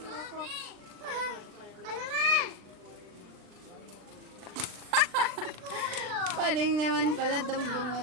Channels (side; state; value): left; late; 39 ms